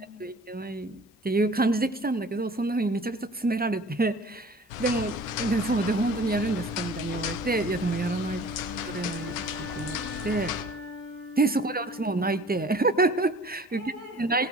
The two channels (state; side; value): normal; both; correlation 0.47